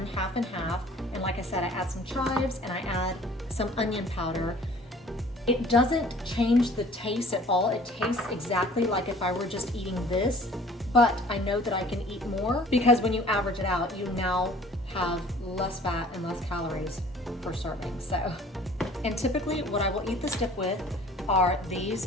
half and half, and like I said, I add some chives and I add some onion powder, it doesn't change the taste at all. It tastes exactly like if I were just eating this, but I know that I can eat more because when you average it out, you now have less fat and less calories per serving. So, and typically what I will eat this dip with are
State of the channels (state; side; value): normal; both; correlation 0.51